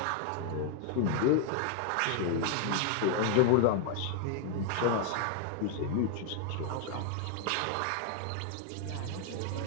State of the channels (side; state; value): both; different; correlation 0.00